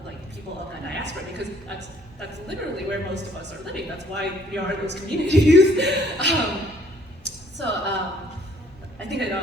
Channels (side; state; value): both; normal; correlation 0.61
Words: like people of that diaspora, because that's literally where most of us are living. That's why we are those communities. I think I